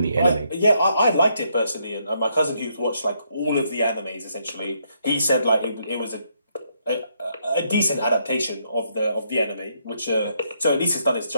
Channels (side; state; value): both; inverted; correlation -0.75